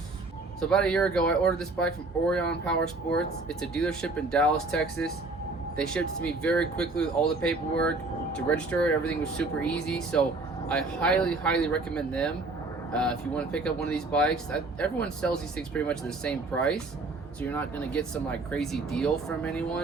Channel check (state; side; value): quieter; left; 3.3 dB